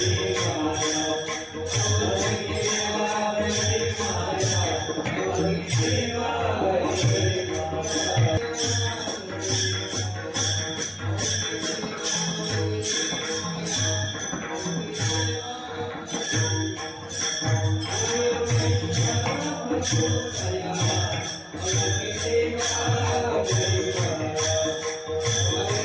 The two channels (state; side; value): identical; both; correlation 1.00